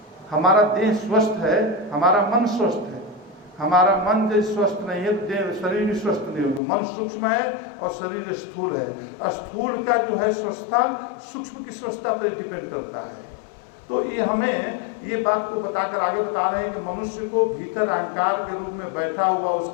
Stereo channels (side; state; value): right; drops out; at 6.6 s